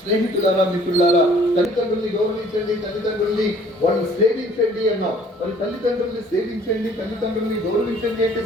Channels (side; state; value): both; normal; correlation 0.56